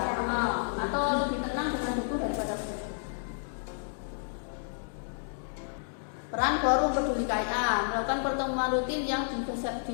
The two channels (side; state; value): right; silent; digital silence